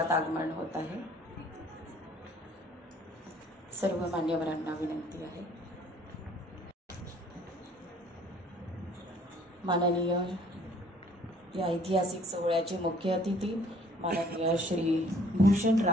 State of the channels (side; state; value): both; normal; correlation 0.58